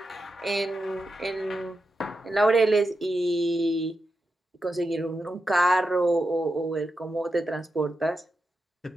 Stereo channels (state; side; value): normal; both; correlation 0.88